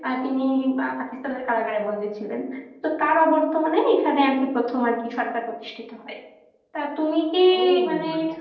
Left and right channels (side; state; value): both; identical; correlation 1.00